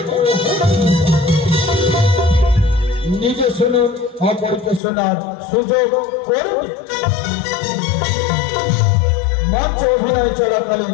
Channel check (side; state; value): right; drops out; at 4.8 s